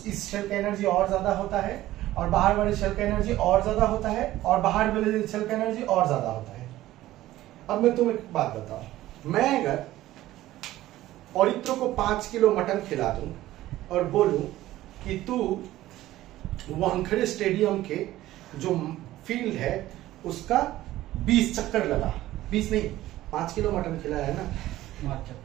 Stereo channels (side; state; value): left; quieter; 15.3 dB